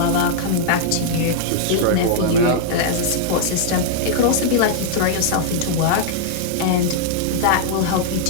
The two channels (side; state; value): both; different; correlation -0.01